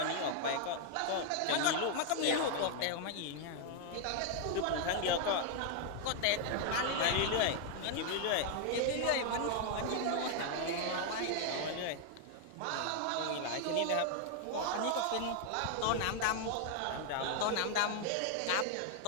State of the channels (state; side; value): different; both; correlation 0.00